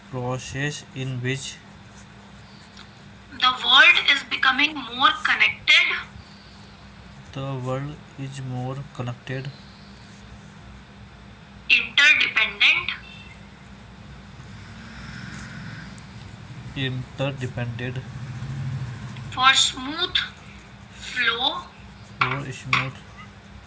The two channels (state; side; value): identical; both; correlation 1.00